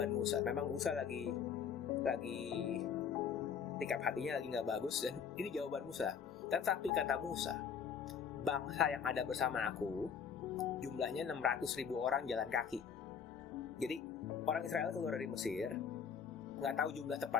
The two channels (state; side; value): quieter; right; 7.1 dB